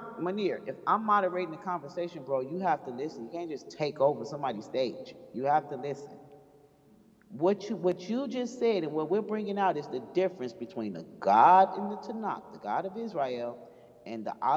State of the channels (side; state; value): both; identical; correlation 1.00